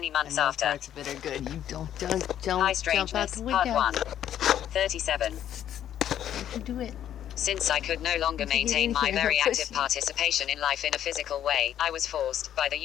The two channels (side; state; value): right; quieter; 10.7 dB